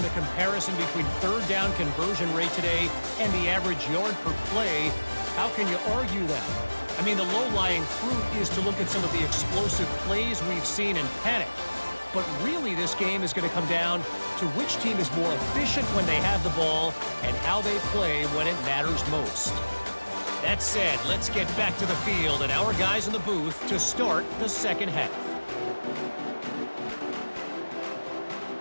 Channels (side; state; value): both; inverted; correlation -1.00